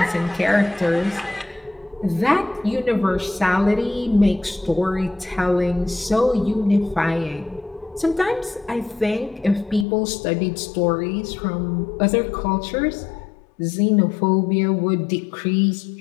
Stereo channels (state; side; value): drops out; right; at 9.9 s